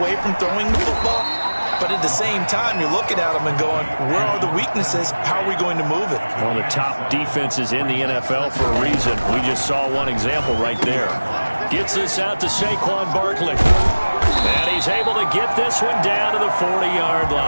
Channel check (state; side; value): inverted; both; correlation -1.00